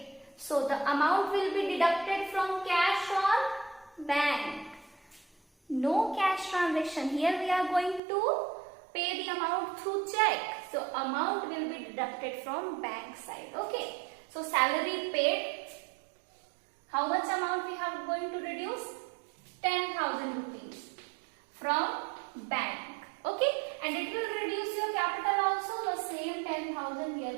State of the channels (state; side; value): drops out; left; at 8.0 s